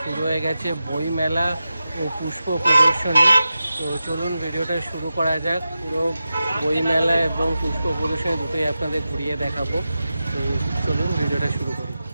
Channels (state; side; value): inverted; both; correlation -0.92